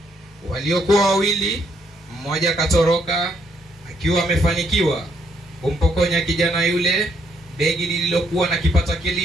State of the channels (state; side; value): normal; both; correlation 0.72